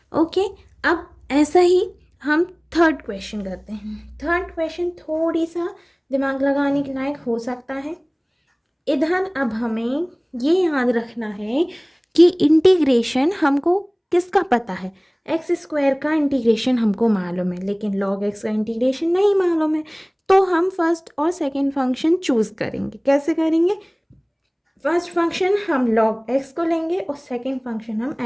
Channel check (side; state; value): both; identical; correlation 1.00